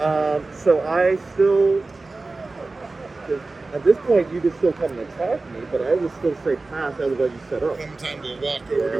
So I still, at this point, you could still come and attack me, but I will still say pass. I would let you set up. Clementine will walk over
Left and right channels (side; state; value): left; quieter; 3.5 dB